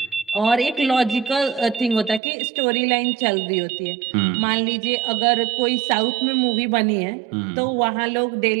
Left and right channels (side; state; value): left; drops out; at 2.2 s